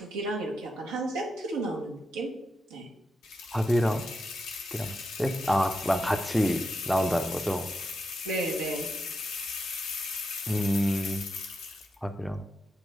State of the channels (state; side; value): normal; both; correlation 0.86